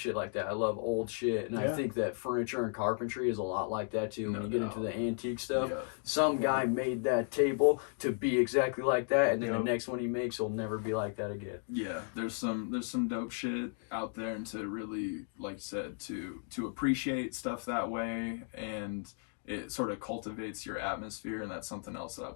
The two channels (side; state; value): right; silent; 55 dB below the other